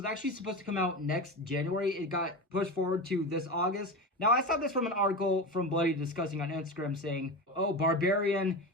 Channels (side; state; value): both; normal; correlation 0.23